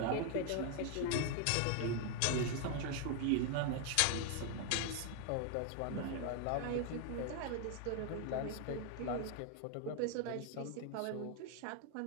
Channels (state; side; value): different; both; correlation 0.00